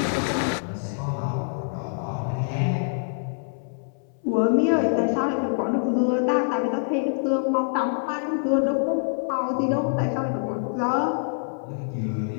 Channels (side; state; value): right; silent; 62 dB below the other